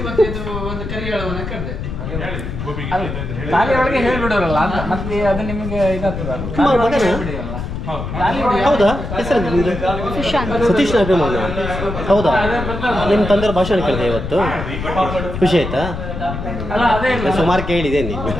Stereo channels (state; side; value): noise; left; rumble, 6 dB below the sound